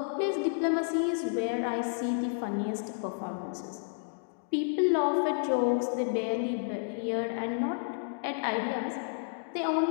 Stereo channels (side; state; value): right; silent; digital silence